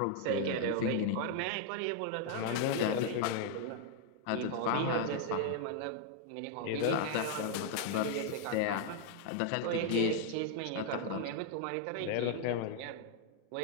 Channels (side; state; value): both; different; correlation 0.00